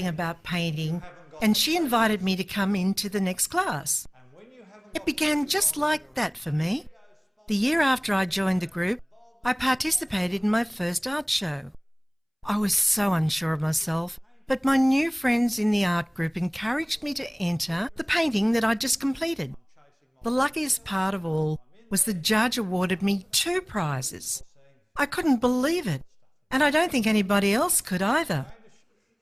about painting, and she invited me to come into the next class. It began just like that for me. The year after I joined the group, I participated in my first art show. I was so unsure of myself, but my new friends in the art group encouraged me to enter the painting that I'd just completed. The luckiest part of all was the judge awarded me 2 prizes. I couldn't believe it, and I don't think anybody else could either.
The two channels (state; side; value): identical; both; correlation 1.00